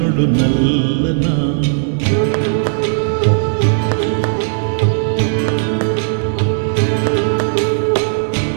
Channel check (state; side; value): silent; left; digital silence